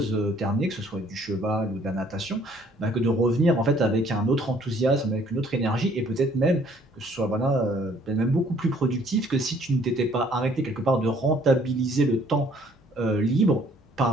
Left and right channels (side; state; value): both; normal; correlation 0.60